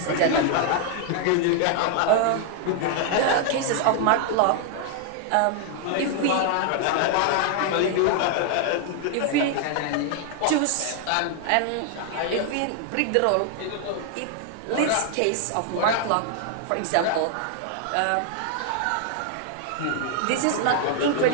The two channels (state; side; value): different; both; correlation 0.00